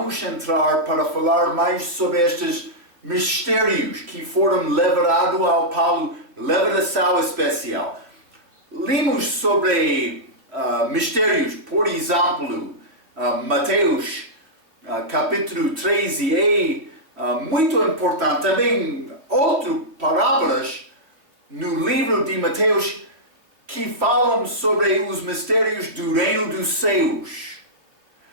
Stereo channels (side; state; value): left; late; 3.0 ms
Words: entrar para falar mais sobre estes mistérios que foram levados ao Paulo, revelação especial. Lemos sobre mistérios, por exemplo, Mateus capítulo 13, muito importante. Também outras parábolas no livro de Mateus que falam sobre os mistérios do reino dos céus.